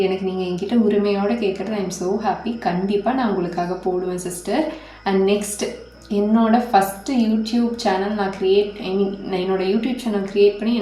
எனக்கு நீங்கள் என்கிட்ட உரிமையோடு கேட்குறது. I am so happy. கண்டிப்பாக நான் உங்களுக்காக போடுவேன் சிஸ்டர். அண்ட் நெக்ஸ்ட் என்னோடய ஃபஸ்ட்டு யூடியூப் சேனல் நான் என்னோடய யூடியூப் சேனல் க்ரியேட் பண்ணி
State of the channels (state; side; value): identical; both; correlation 1.00